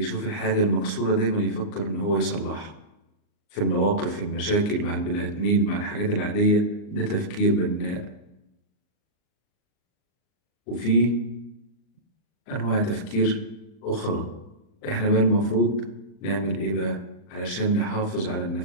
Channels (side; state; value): right; late; 39 ms